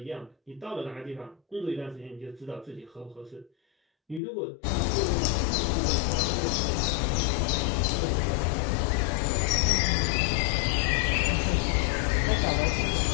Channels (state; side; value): drops out; right; at 4.2 s